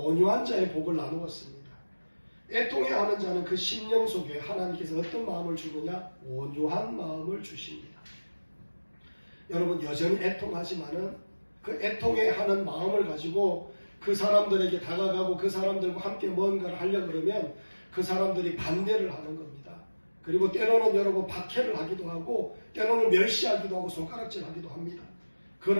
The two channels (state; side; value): inverted; both; correlation -1.00